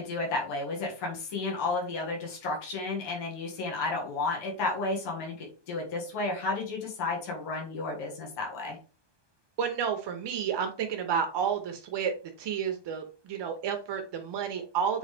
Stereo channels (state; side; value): late; left; 1.2 ms